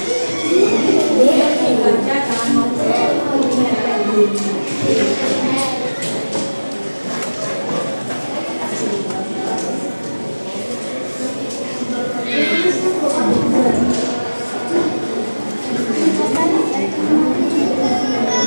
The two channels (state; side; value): inverted; both; correlation -1.00